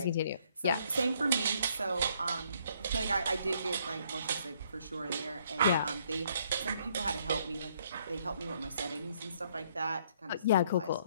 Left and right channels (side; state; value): both; inverted; correlation -0.67